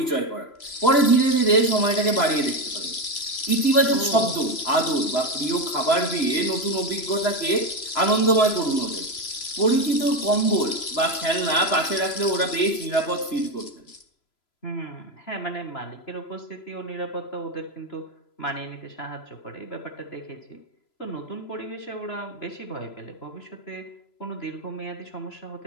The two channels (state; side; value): late; right; 3.0 ms